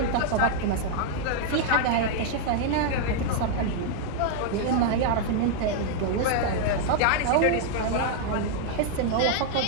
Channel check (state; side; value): different; both; correlation -0.01